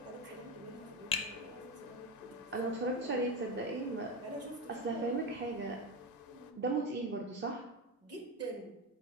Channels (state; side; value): normal; both; correlation 0.16